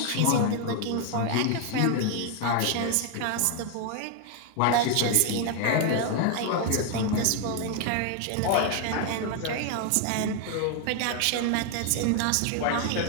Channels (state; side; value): different; both; correlation 0.01